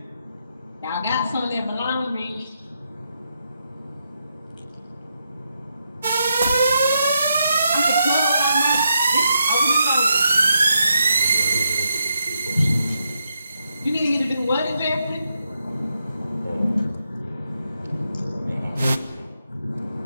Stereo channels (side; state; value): both; inverted; correlation -0.82